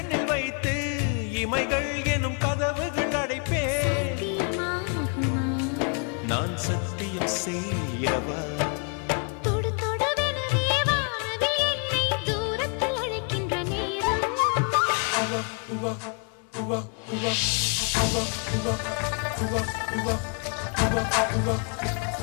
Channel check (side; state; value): right; quieter; 39.3 dB